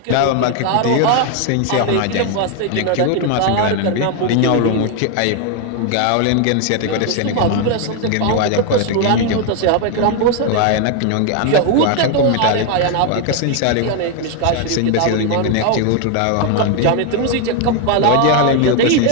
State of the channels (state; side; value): different; both; correlation 0.01